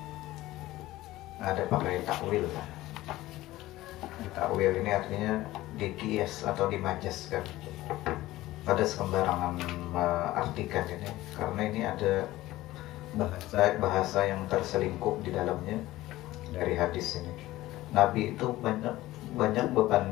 Ada pakai takwil kan? Takwil ini artinya dikias atau dimajaskan. Pada sembarangan artikan ini, karena ini ada bahasa yang terselingkup di dalamnya dari hadis ini. Nabi itu banyak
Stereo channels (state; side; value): quieter; right; 16.8 dB